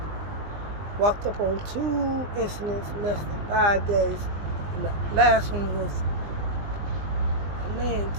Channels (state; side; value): late; left; 20 ms